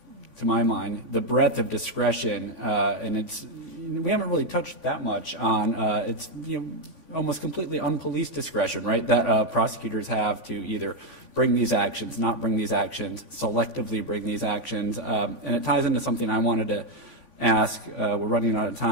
to my mind, the breadth of discretion, and we haven't really touched that much on it's almost completely unpoliced discretion, right? That prosecutors have to either bring these actions, not bring these actions, selectively bring these actions, and it ties into something I wanted to ask. We're running out of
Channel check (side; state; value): left; late; 3.5 ms